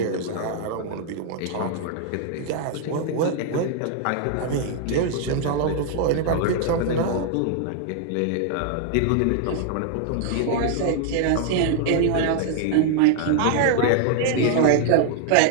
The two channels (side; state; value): both; different; correlation 0.00